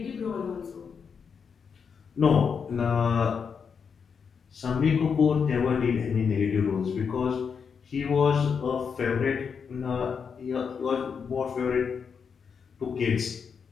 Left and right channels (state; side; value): quieter; right; 6.3 dB